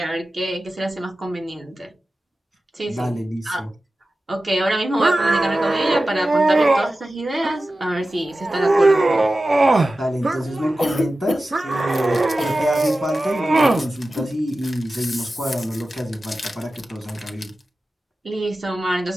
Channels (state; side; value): normal; both; correlation 0.95